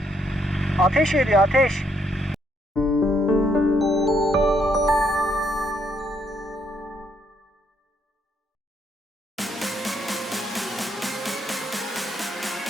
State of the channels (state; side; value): normal; both; correlation 0.72